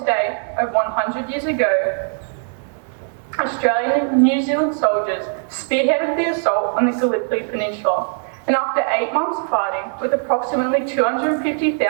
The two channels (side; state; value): left; silent; 66 dB below the other